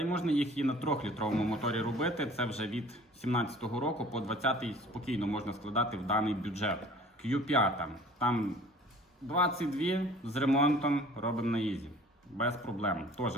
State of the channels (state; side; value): normal; both; correlation 0.49